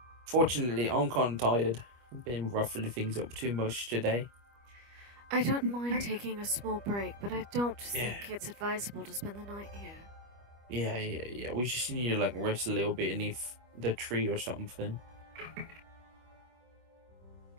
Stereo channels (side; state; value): left; late; 25 ms